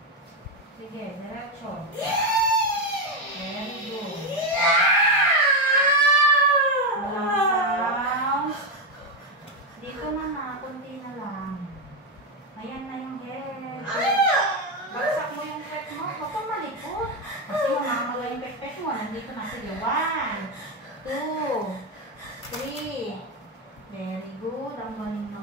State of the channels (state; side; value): normal; both; correlation 0.07